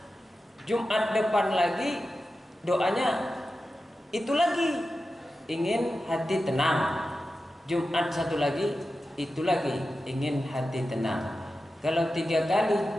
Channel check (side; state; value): both; normal; correlation 0.92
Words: Jumat depan lagi doanya itu lagi ingin hati tenang. Jumat satu lagi itu lagi ingin hati tenang. Kalau 3 kali